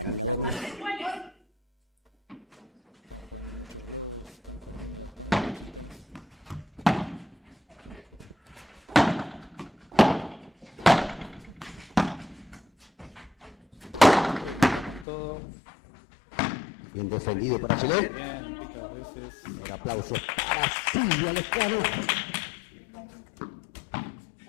¿Cuántos iguales? Todo. Bien defendido para Chile.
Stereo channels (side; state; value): right; drops out; at 15.1 s